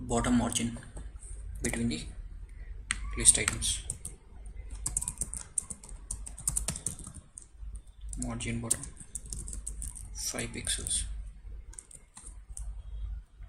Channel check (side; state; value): both; identical; correlation 1.00